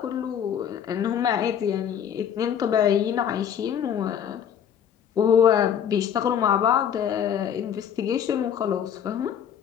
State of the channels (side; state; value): right; quieter; 8.8 dB